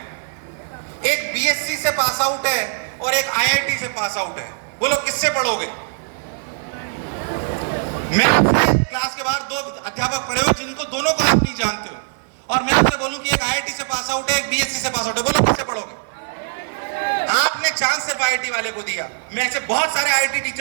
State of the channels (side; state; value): left; silent; 58 dB below the other